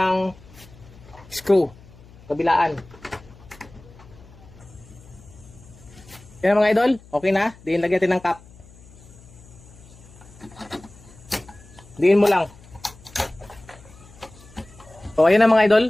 screw kabilaan. Yan mga idol, okay na. Diin lagyan natin ng cap. Diin mo lang. So ayan na mga idol,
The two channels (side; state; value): left; noise; hum, 22 dB below the sound